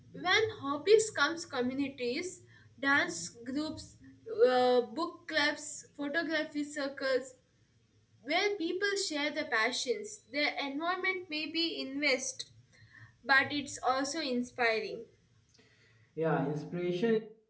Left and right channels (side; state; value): both; identical; correlation 1.00